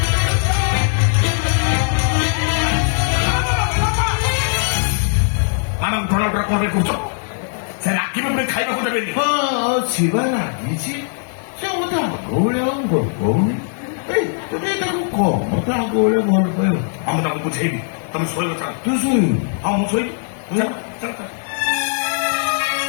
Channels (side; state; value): right; silent; digital silence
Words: ମ୍ୟାଡାମ ପ୍ରଣବଟା କଣ ପାଇଁ କରୁଛ? ସେ ରାକ୍ଷୀ ଖାଇବାକୁ ଦେବେନି। ହଁ, ଶିବା ଲାଗିଛି। ସେ ମତେ ଆଗ ଭଳିଆ ଆଉ ଭଲ ପାଉନି। ଏଇ ତୁମେ ତାକୁ କହ ମତେ ଆଗ ଭଳିଆ ଭଲ ପାଇବ। ମୁଁ ତାକୁ ବୁଝେଇବି ତମେ ଶୋଇବ ଚାଲ। ତୁ ଶୋଇବୁ। ହଁ ମୁଁ ଶୋଇବି ଚାଲ ଚାଲ ଚାଲ।